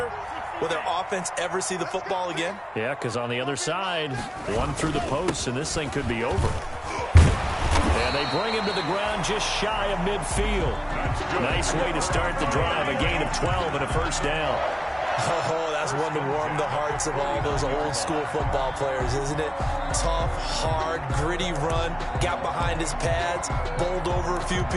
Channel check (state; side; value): identical; both; correlation 1.00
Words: will their offense ever see the football again? Yeah, because on the other side, one through the post, and this thing could be over. And they bring him to the ground just shy of midfield. Nice way to start the drive. A gain of 12 and a 1st down. Oh, that's one to warm the hearts of all those old-school football players, isn't it? Tough, hard, gritty run, got behind his pads, bowled over a few